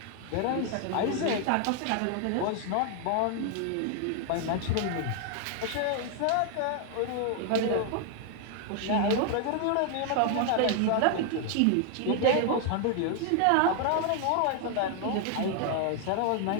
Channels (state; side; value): different; both; correlation 0.00